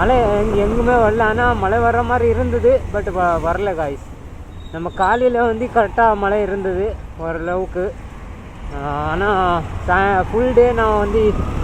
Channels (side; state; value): both; identical; correlation 1.00